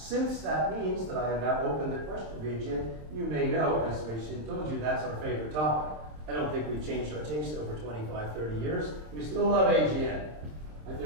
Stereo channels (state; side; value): late; left; 26 ms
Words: that means that I have now opened the question of AGN, you may know, as Wei-Shin told you, that's our favorite topic. I don't think we've changed our taste over 25, 30 years. We still love AGN. Like,